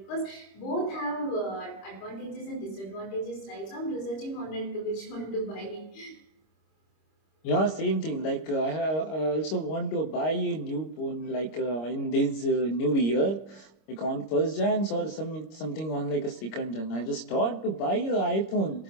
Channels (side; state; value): right; late; 25 ms